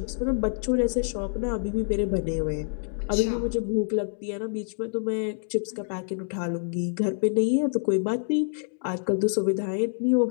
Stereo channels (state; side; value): silent; right; digital silence